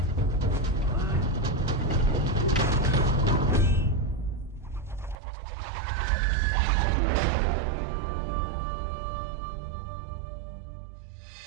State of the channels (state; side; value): drops out; left; at 5.2 s